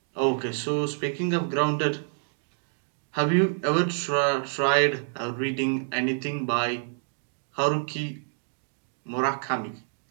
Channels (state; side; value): silent; left; digital silence